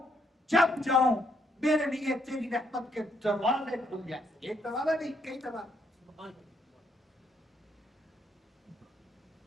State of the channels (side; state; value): both; normal; correlation 0.73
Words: جب جاؤں میرے لیے تیری رحمت کے دروازے کھل جائیں۔ ایک دروازہ نہیں، کئی دروازے۔